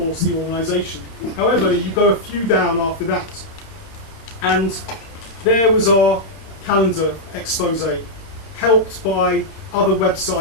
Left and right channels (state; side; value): late; right; 31 ms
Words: the organisation. However, you go a few down after that, and there was our calendar expose, helped by other